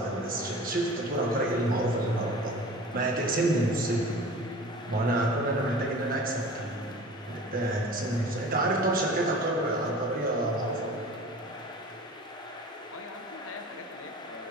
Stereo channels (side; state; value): both; normal; correlation 0.41